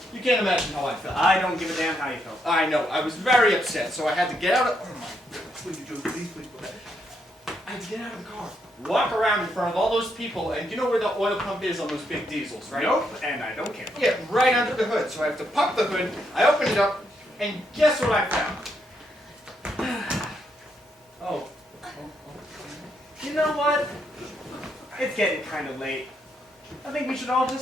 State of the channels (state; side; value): normal; both; correlation 0.77